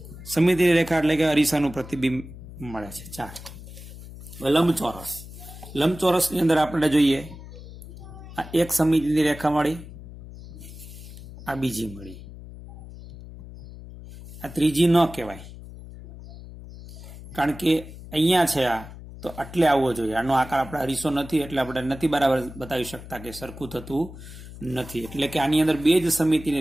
સમમિતિની રેખા એટલે કે અરીસાનું પ્રતિબિંબ મળે છે 4. લંબચોરસની અંદર આપણે જોઈએ આ એક સમમિતિની રેખા મળી, આ બીજી મળી, આ ત્રીજી ન કહેવાય કારણ કે અહીંયા છે આ તો આટલે આવવો જોઈએ. આનો આકાર આપણે અરીસો નથી એટલે આપણે નથી બરાબર બતાવી શકતા કે સરખું થતું નથી. એટલે કે આની અંદર 2 જ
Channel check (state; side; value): noise; left; hum, 15 dB below the sound